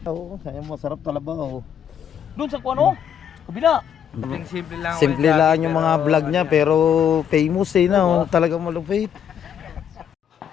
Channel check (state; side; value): quieter; right; 8.8 dB